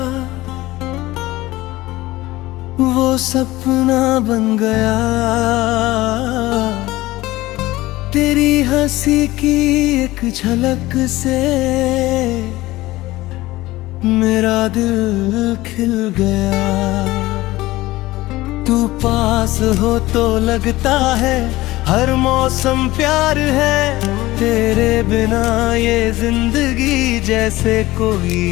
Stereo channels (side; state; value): right; quieter; 18.2 dB